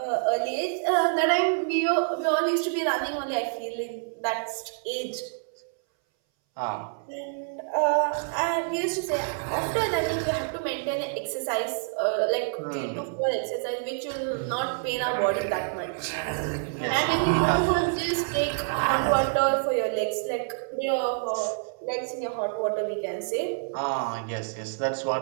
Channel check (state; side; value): silent; left; 60 dB below the other